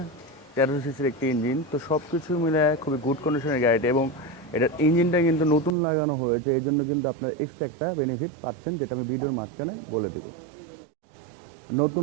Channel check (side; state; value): left; drops out; at 5.8 s